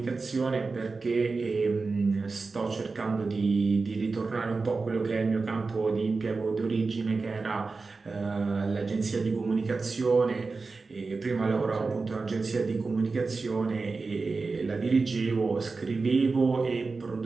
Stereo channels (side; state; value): left; quieter; 4.1 dB